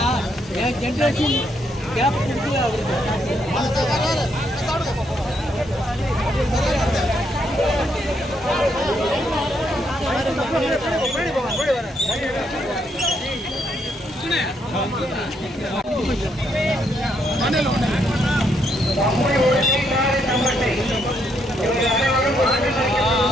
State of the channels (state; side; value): normal; both; correlation 0.75